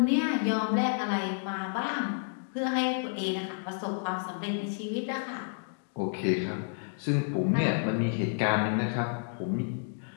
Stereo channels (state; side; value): silent; right; digital silence